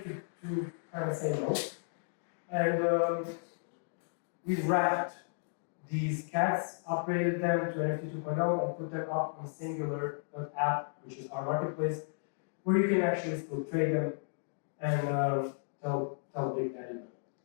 to kind of say no. And we wrapped these cats, upgraded them to NFT 2.0, and put them up on Singular.app, which is our marketplace, where you can actually still trade them and tell Big Daddy no.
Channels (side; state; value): right; silent; digital silence